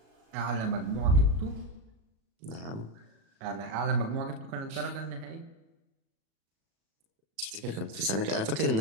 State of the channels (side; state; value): left; late; 37 ms